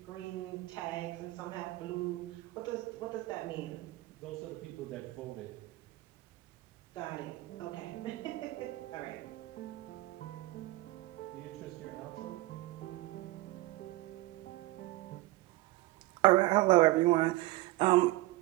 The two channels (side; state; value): left; quieter; 19.4 dB